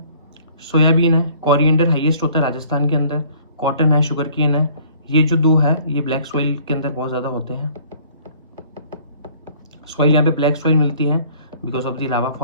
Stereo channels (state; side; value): inverted; both; correlation -0.55